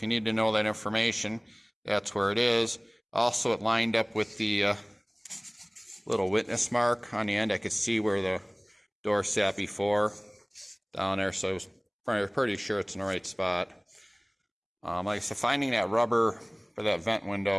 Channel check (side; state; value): both; identical; correlation 1.00